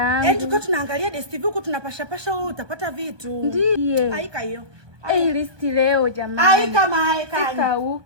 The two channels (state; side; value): late; left; 1.3 ms